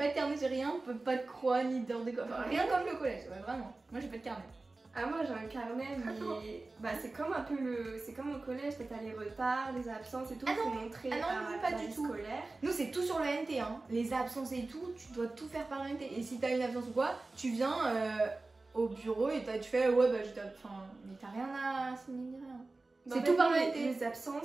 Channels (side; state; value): left; quieter; 3.3 dB